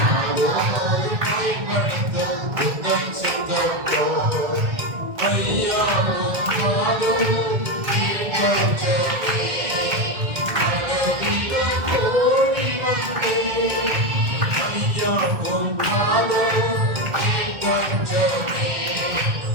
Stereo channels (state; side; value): late; left; 1.7 ms